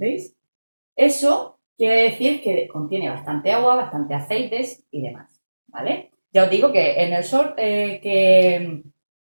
Eso quiere decir que contiene bastante agua, bastante aceites y demás, ¿vale? Ya os digo que en el short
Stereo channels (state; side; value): inverted; both; correlation -1.00